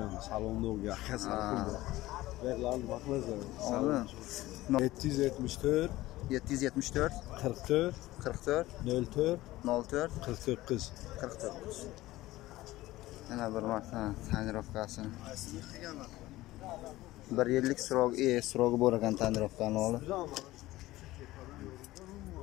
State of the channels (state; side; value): quieter; right; 17.3 dB